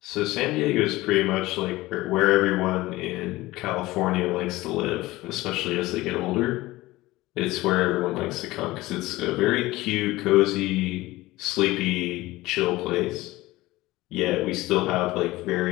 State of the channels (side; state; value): right; quieter; 18.7 dB